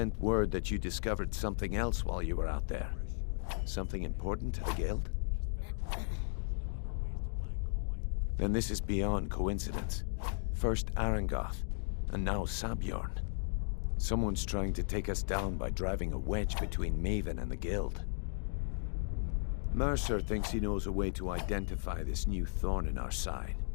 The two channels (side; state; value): right; silent; digital silence